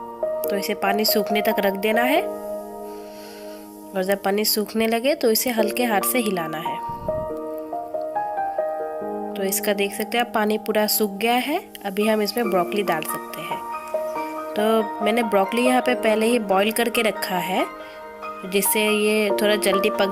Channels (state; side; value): identical; both; correlation 1.00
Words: तो इसे पानी सूखने तक रख देना है। और जब पानी सूखने लगे तो इसे हल्के हाथ से हिलाना है। तो इसका देख सकते हैं आप, पानी पूरा सूख गया है। अभी हम इसमें ब्रोकली डाल सकते हैं। तो मैंने ब्रोकली यहाँ पे पहले ही बॉईल करके रखा है, जिससे ये थोड़ा जल्दी